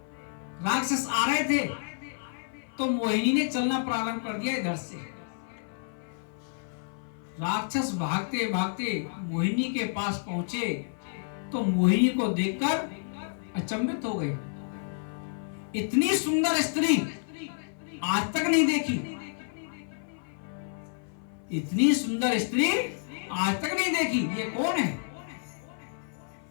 राक्षस आ रहे थे तो मोहिनी ने चलना प्रारंभ कर दिया इधर से। राक्षस भागते भागते मोहिनी के पास पहुंचे तो मोहिनी को देखकर अचंभित हो गए। इतनी सुंदर स्त्री आज तक नहीं देखी, इतनी सुंदर स्त्री आज तक नहीं देखी, ये कौन है?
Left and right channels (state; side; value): silent; right; 57 dB below the other